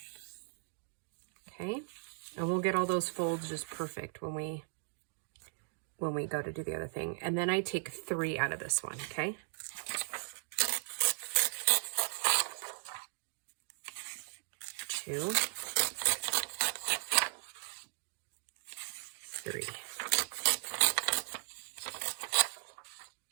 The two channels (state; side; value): silent; left; digital silence